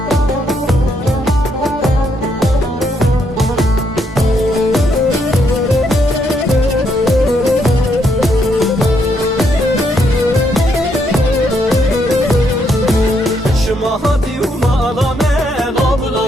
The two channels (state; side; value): normal; both; correlation 0.75